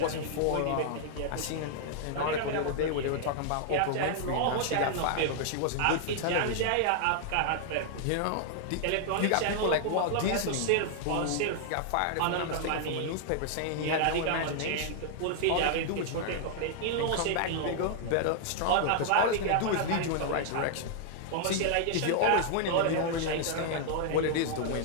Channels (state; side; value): different; both; correlation -0.01